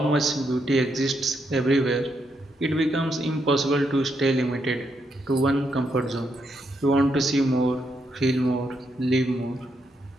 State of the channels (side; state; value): both; normal; correlation 0.79